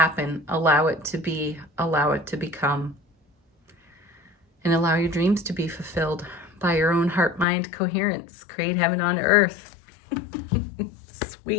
Allow it to be. Allow it to become. And allow your dreams to be fulfilled by your own heart-mind coherence. Create heaven on earth.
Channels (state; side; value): drops out; right; at 7.5 s